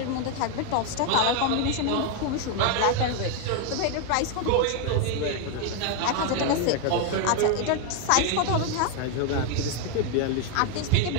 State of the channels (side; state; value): both; different; correlation 0.01